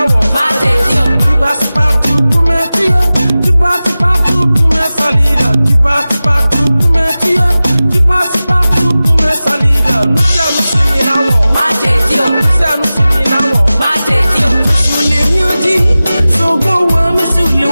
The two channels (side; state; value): both; inverted; correlation -0.96